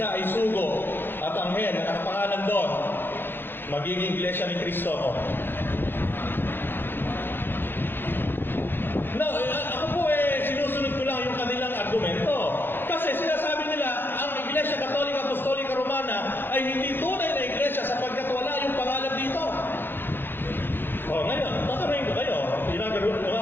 ay sugo at anghel na nakapangalan doon, magiging iglesia ni Kristo ako. No, ako po sinusunod ko lang yung kanilang argumento. Kasi sinasabi nila, ang Iglesia Katolika Apostolika Romana ay hindi tunay na iglesia sapagkat wala yung pangalan dito. O ngayon, tatanungin ko kayo, yung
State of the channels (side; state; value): right; late; 0.10 ms